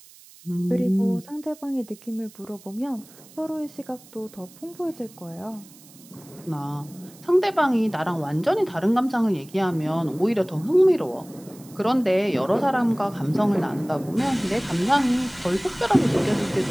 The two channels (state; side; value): noise; right; hiss, 23 dB below the sound